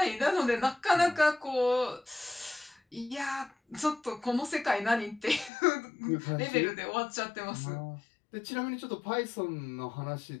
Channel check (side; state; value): right; drops out; at 5.5 s